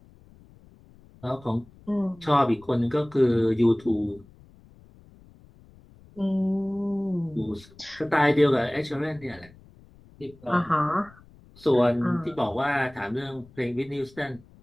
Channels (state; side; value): noise; left; rumble, 25 dB below the sound